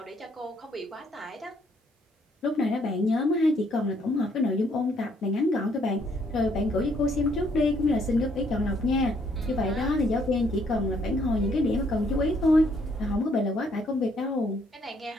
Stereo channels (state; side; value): normal; both; correlation 0.68